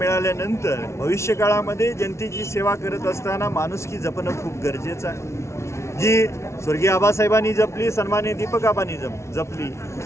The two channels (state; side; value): late; right; 0.13 ms